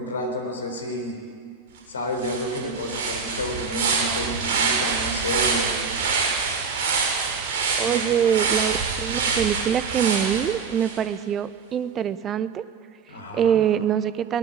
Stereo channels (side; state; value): left; quieter; 5.5 dB